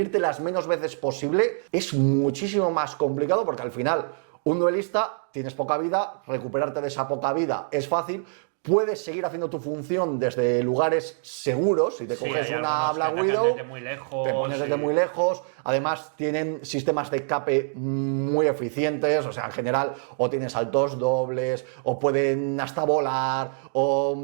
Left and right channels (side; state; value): left; silent; digital silence